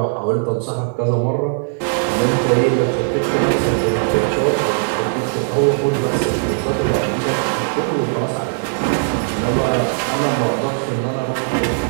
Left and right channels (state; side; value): silent; left; digital silence